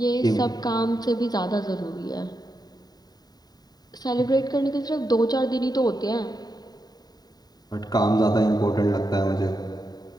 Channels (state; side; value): late; right; 0.19 ms